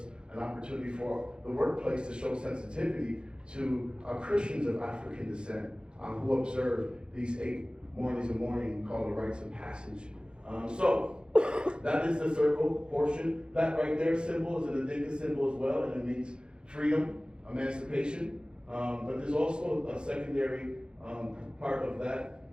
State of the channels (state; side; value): late; left; 0.051 ms